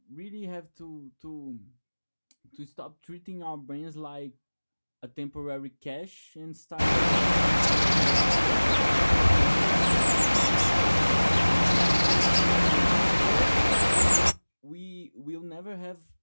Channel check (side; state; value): both; inverted; correlation -1.00